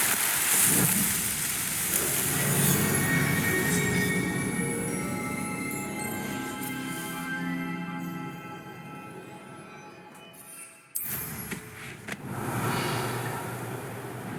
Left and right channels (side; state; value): both; identical; correlation 1.00